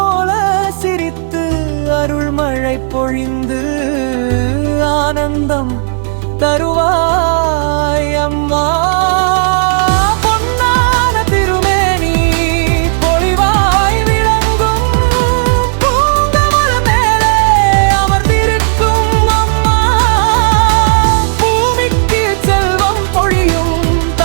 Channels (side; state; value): left; silent; 61 dB below the other